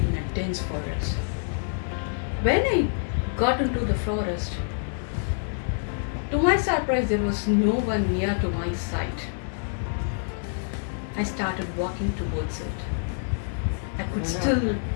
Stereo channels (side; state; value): right; silent; digital silence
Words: a dense forest. When I got into the forest, to my surprise, there was no one near to my side. I started walking towards it. I could still